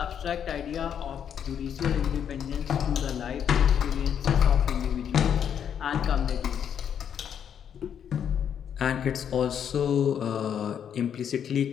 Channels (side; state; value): right; quieter; 8.5 dB